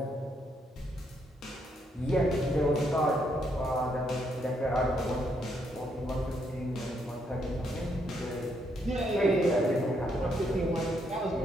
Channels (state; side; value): normal; both; correlation 0.75